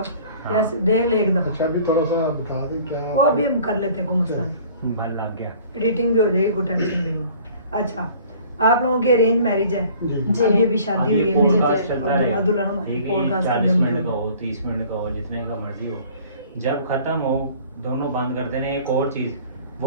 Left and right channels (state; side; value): inverted; both; correlation -0.51